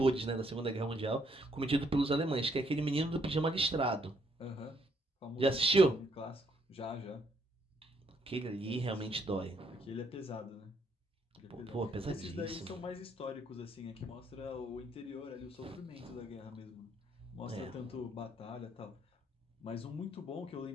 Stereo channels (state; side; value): normal; both; correlation 0.71